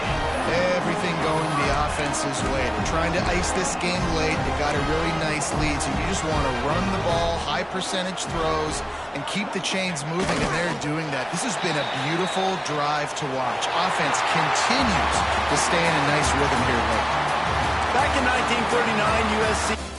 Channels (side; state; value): both; identical; correlation 1.00